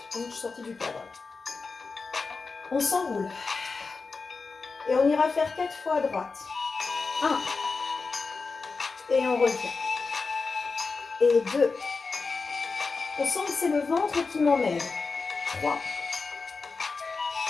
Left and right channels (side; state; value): right; quieter; 4.4 dB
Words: Je suis sortie du cadre. On s'enroule. Et on ira faire 4 fois à droite. 1. Et on revient. Et 2. On sent que c'est le ventre qui m'emmène. 3.